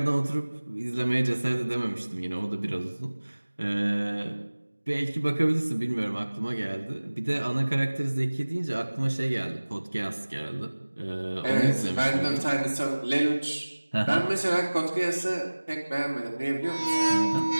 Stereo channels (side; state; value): both; inverted; correlation -1.00